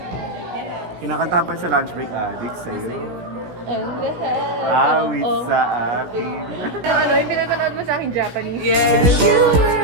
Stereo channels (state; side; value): late; left; 17 ms